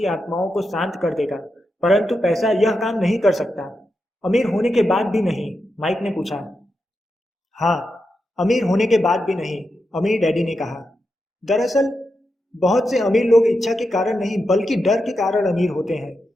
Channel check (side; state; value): both; normal; correlation 0.87